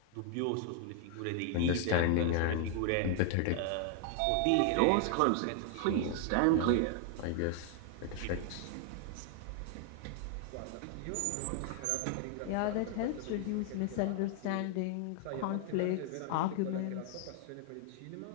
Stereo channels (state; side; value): different; both; correlation 0.00